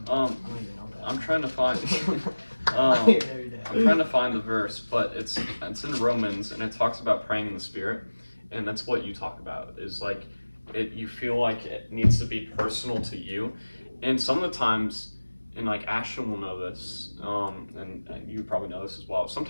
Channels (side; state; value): both; inverted; correlation -1.00